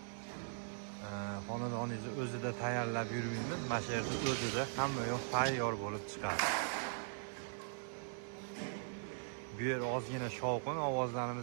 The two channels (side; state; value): left; silent; digital silence